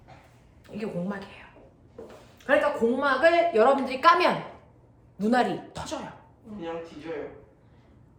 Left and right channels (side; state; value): both; identical; correlation 1.00